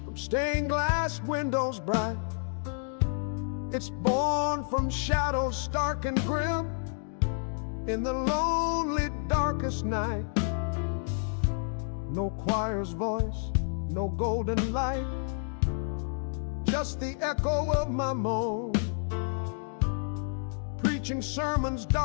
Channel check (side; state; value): right; silent; 58 dB below the other